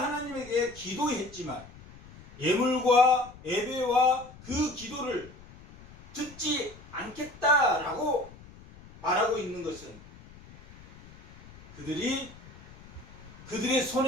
기도했지만 예물과 예배와 그 기도를 듣지 않겠다라고 말하고 있는 것은 그들이 그들의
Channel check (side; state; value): left; noise; rumble, 20 dB below the sound